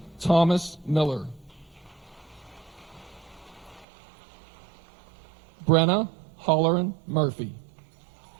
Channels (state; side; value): drops out; left; at 3.9 s